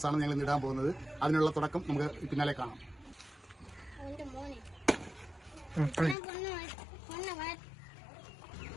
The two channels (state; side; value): drops out; right; at 6.2 s